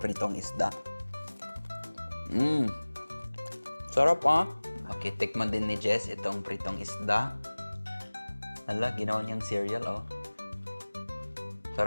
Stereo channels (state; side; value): inverted; both; correlation -1.00